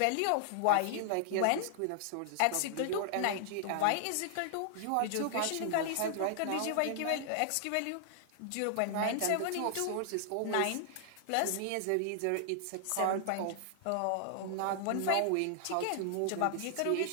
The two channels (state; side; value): different; both; correlation -0.01